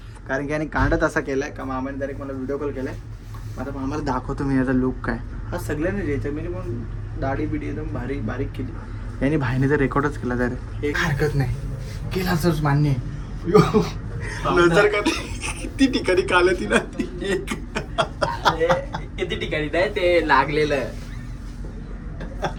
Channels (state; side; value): identical; both; correlation 1.00